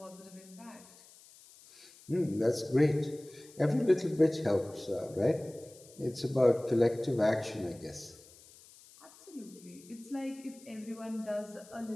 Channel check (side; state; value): left; noise; hiss, 23 dB below the sound